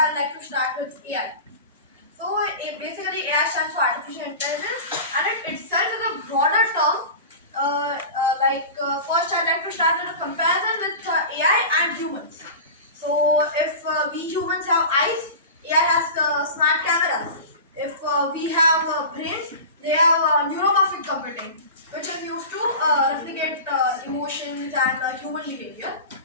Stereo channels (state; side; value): inverted; both; correlation -0.31